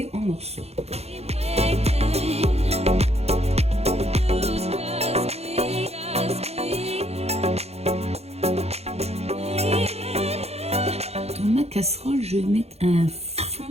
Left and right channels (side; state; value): left; late; 0.30 ms